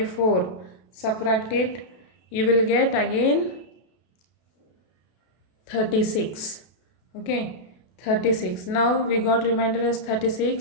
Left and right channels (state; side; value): late; right; 32 ms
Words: Subtract it. You will get again 36. Okay, 36. Now we got remainder as